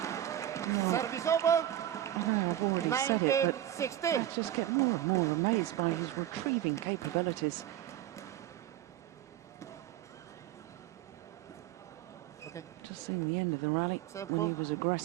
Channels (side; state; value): left; quieter; 12.4 dB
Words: I just get more and more amazed by his retrieving capabilities. Okay. Just seeing the end of the rally when he was